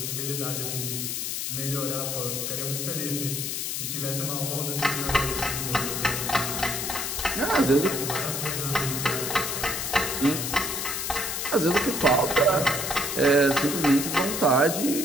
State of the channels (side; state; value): left; noise; hiss, 2 dB below the sound